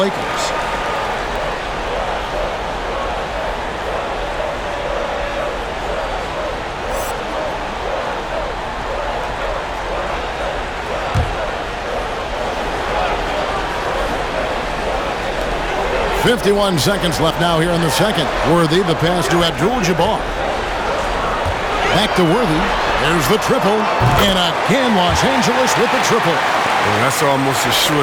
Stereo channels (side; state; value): both; identical; correlation 1.00